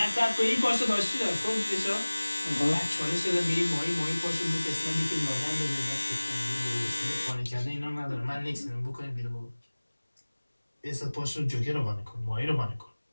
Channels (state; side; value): inverted; both; correlation -1.00